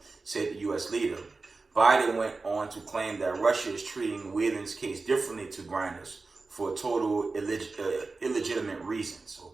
said the U.S. leader. Biden went on to claim that Russia is treating Wayland's case differently to Griner's for total illegitimate reasons.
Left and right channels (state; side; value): quieter; left; 3.8 dB